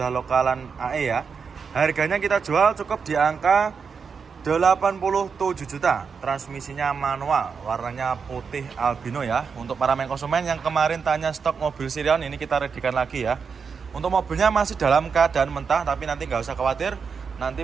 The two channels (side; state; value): left; quieter; 5.8 dB